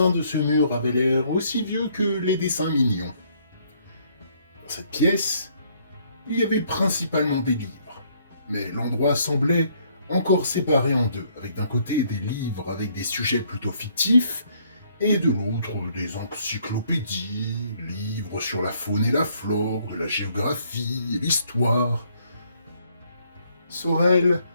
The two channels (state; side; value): inverted; both; correlation -0.67